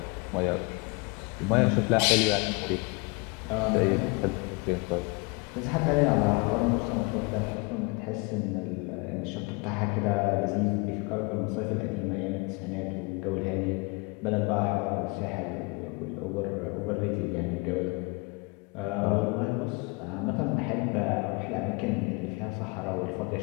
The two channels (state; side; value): quieter; right; 28.8 dB